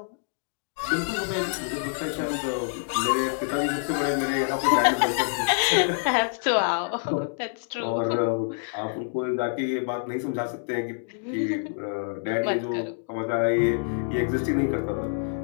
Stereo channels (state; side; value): silent; right; digital silence